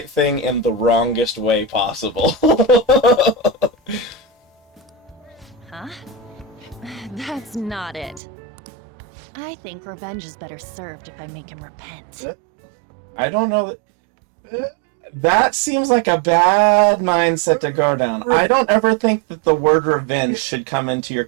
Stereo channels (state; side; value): drops out; left; at 8.2 s